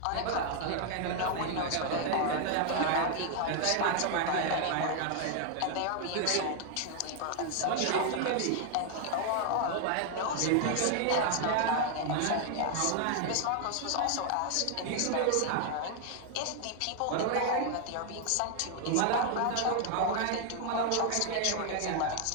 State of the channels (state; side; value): different; both; correlation 0.00